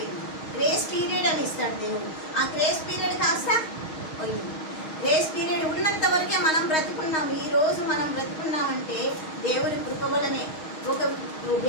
గ్రేస్ పీరియడ్ అని ఇస్తాడు దేవుడు, ఆ గ్రేస్ పీరియడ్ కాస్త పోయింది. గ్రేస్ పీరియడ్ ఉన్నంత వరకే మనం బ్రతుకున్నాం. ఈరోజు మనం బ్రతుకున్నామంటే దేవుని కృప వలనే. ఒక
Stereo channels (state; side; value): late; right; 6.4 ms